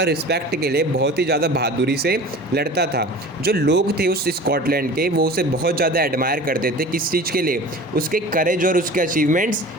रिस्पेक्ट के लिए बहुत ही ज़्यादा बहादुरी से लड़ता था। जो लोग थे उस स्कॉटलैंड के वो उसे बहुत ज़्यादा एडमायर करते थे। किस चीज़ के लिए? उसके करेज और उसके अचीवमेंट्स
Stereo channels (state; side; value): normal; both; correlation 0.39